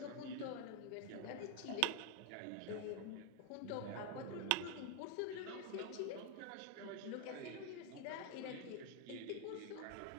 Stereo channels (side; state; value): both; different; correlation 0.01